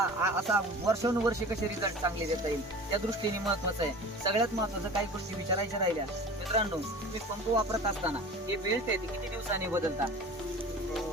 असा वर्षानुवर्षे कसे रिझल्ट चांगले देता येईल, त्या दृष्टीने महत्वाचं आहे. सगळ्यात महत्वाचं काही गोष्टी विचारायच्या राहिल्या. मित्रांनो, तुम्ही पंप वापरत असताना हे बेल्ट आहे ते किती दिवसांनी बदलता?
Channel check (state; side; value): normal; both; correlation 0.39